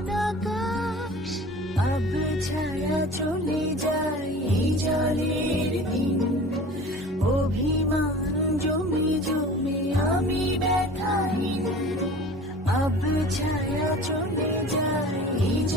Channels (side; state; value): both; normal; correlation 0.41